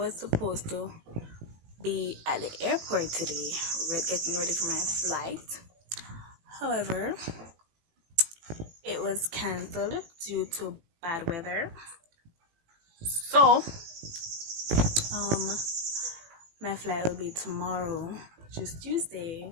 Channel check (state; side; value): late; left; 18 ms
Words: supposed to be at the airport today, getting ready for my flight. However, it was cancelled due to bad weather. So my flight will be tomorrow, which is Tuesday